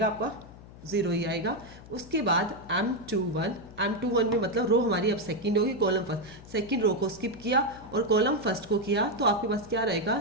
आपका 0 ही आएगा। उसके बाद M21 में मतलब रो हमारी अब सेकंड होगी, कॉलम फर्स्ट, सेकंड रो को स्किप किया और कॉलम फर्स्ट को किया, तो आपके पास क्या रहेगा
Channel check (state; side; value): noise; left; hum, 18 dB below the sound